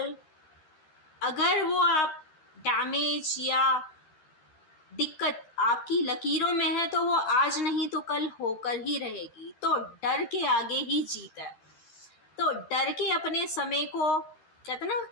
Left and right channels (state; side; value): late; right; 13 ms